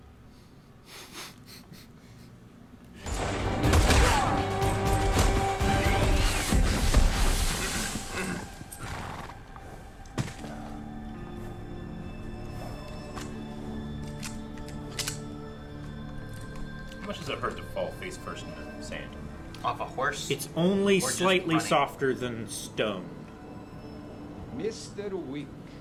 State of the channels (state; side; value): identical; both; correlation 1.00